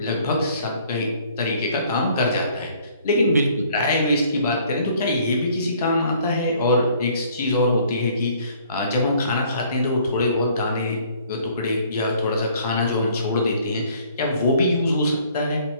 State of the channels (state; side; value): inverted; both; correlation -0.59